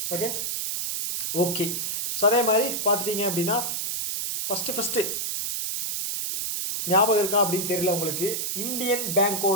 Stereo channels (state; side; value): noise; right; hiss, 2 dB below the sound